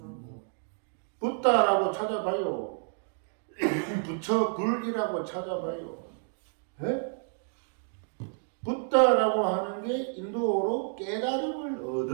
붓다라고 찾아봐요. 부처 불이라고 찾아봐요. 예? 붓다라고 하는 게 인도어로 깨달음을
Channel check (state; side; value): silent; left; 58 dB below the other